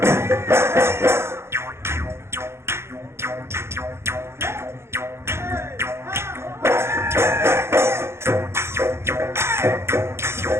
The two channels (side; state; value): left; late; 0.12 ms